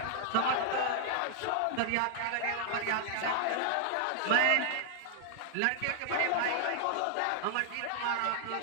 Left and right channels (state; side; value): different; both; correlation -0.01